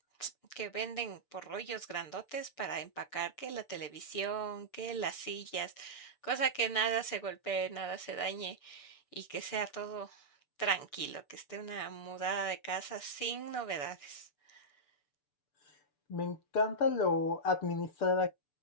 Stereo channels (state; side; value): late; right; 6.8 ms